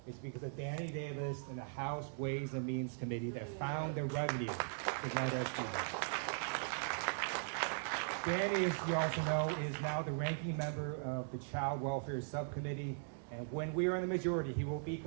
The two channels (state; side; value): silent; left; digital silence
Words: is because of Danny Davis and the House Ways and Means Committee that found the revenue to make those deals. Danny, as you also know, is now the ranking member of the Child Welfare Subcommittee, and when we are in the majority, he will